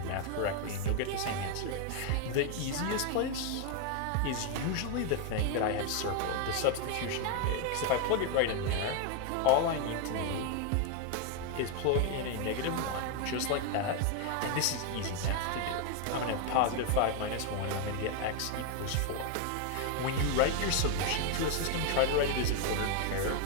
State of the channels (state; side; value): different; both; correlation 0.01